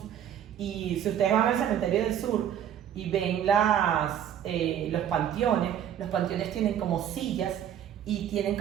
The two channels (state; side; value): quieter; left; 9.9 dB